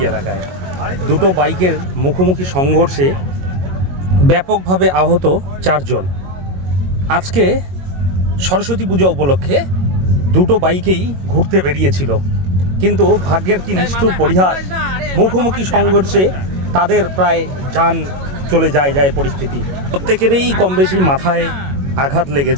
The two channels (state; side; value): late; left; 22 ms